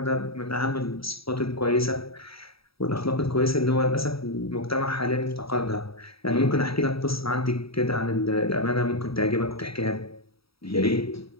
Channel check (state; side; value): late; right; 0.76 ms